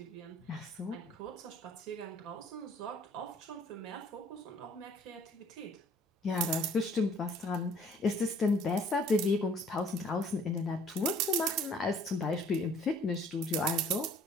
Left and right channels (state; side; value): normal; both; correlation 0.56